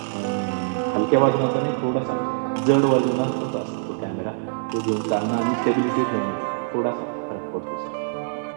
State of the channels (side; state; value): left; silent; 63 dB below the other